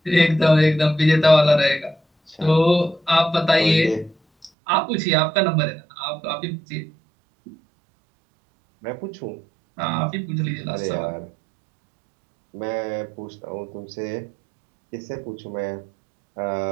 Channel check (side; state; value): left; drops out; at 4.5 s